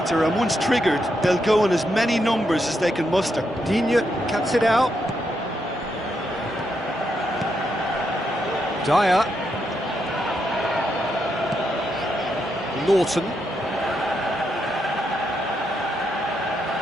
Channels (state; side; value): normal; both; correlation 0.81